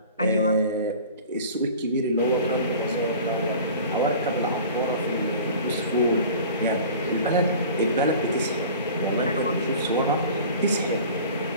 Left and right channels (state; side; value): inverted; both; correlation -0.42